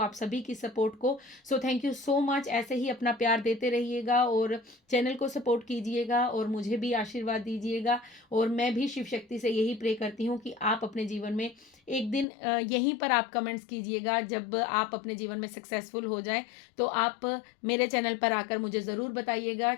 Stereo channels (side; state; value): right; drops out; at 12.2 s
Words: सभी की सपोर्ट को। So thank you so much. ऐसे ही अपना प्यार देते रहिएगा और चैनल को सपोर्ट कीजिएगा और मुझे भी आशीर्वाद दीजिएगा। और मैं भी शिव शक्ति से यही प्रे करती हूँ कि आप अपने जीवन में एक दिन यहीं पर आप कमेंट्स कीजिएगा, जब आप अपने जीवन में सक्सेसफुल हो जाएं तो आप मेरे चैनल पर आकर मुझे ज़रूर बताइएगा